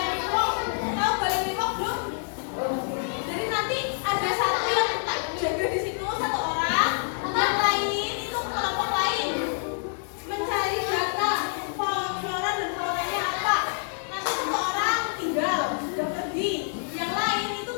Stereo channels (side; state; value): right; silent; digital silence